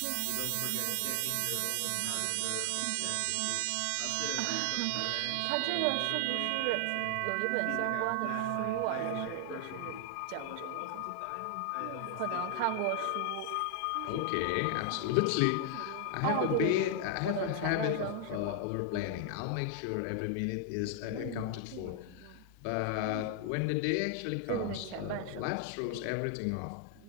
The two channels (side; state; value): both; different; correlation 0.00